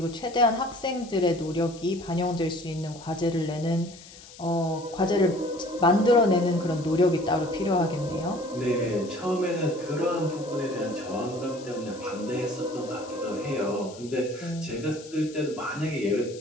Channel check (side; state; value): left; noise; hiss, 19 dB below the sound